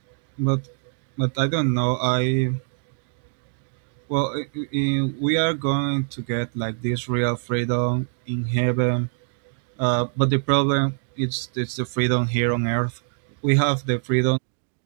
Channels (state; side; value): silent; left; digital silence